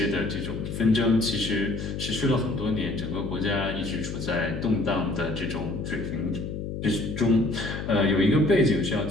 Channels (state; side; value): noise; left; hum, 6 dB below the sound